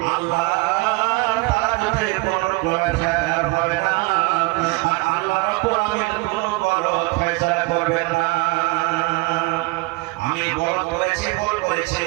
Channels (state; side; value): quieter; left; 25.1 dB